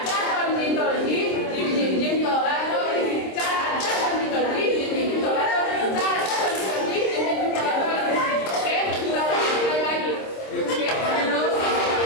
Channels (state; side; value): late; right; 26 ms